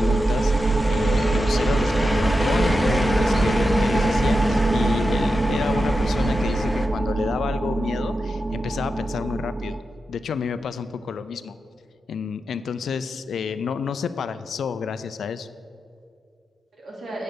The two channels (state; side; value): normal; both; correlation 0.89